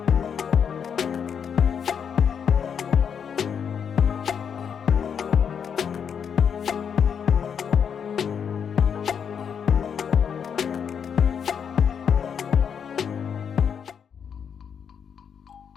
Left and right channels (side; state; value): right; quieter; 7.4 dB